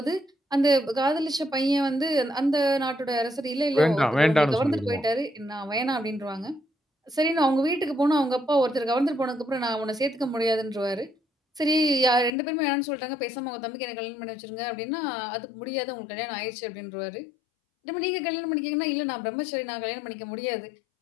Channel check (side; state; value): right; drops out; at 12.3 s